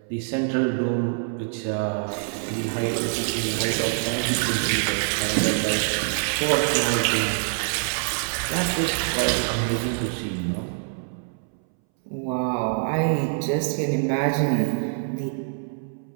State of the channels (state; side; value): silent; left; 62 dB below the other